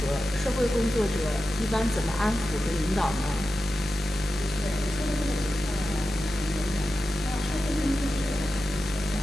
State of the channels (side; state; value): both; normal; correlation 0.92